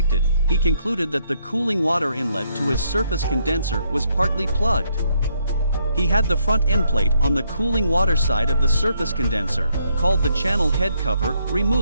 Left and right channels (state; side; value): inverted; both; correlation -0.73